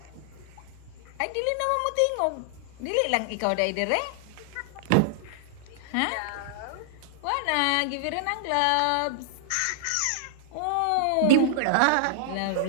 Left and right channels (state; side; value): different; both; correlation -0.01